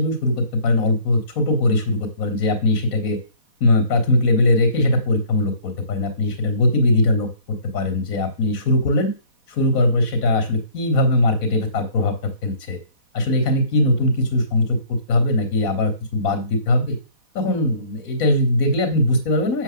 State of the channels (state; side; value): late; right; 4.1 ms